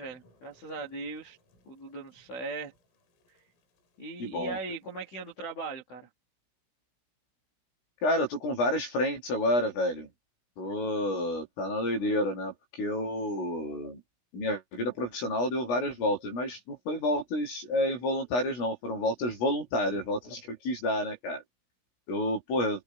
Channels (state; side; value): late; right; 16 ms